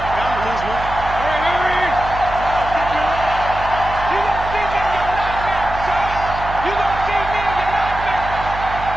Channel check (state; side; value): noise; right; hum, 10 dB below the sound